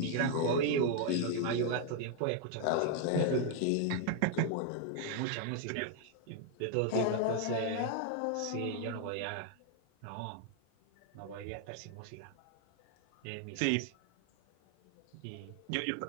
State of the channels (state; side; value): different; both; correlation 0.00